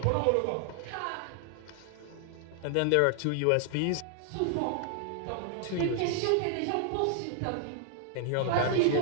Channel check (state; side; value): different; both; correlation 0.00